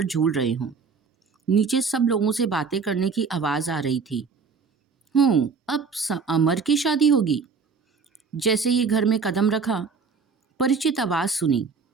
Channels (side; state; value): left; quieter; 5.2 dB